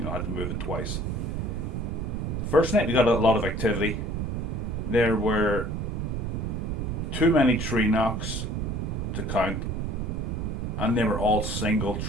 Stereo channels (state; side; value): noise; right; rumble, 2 dB below the sound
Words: I had to move it twice. The first night we got a lot of activity. There were too many tree knocks to count, and they were all single